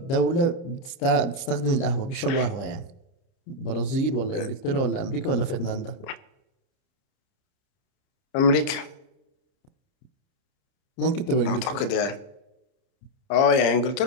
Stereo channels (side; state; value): right; late; 30 ms